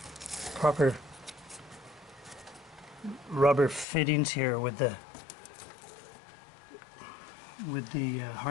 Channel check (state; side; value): drops out; right; at 3.9 s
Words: proper rubber fittings here with the